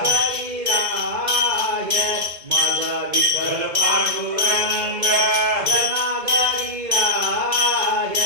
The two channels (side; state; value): left; late; 2.0 ms